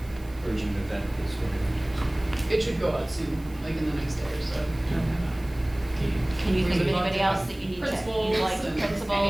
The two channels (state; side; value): noise; right; hiss, 25 dB below the sound